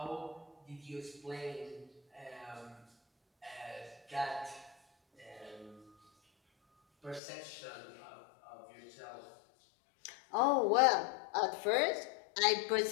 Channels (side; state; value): right; drops out; at 7.2 s